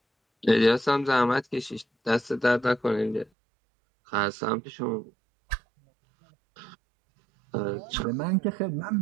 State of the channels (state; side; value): drops out; left; at 3.3 s